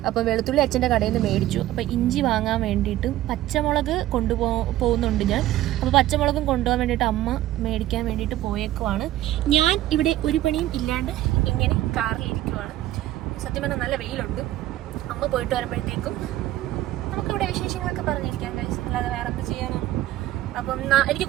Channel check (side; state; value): left; quieter; 14.6 dB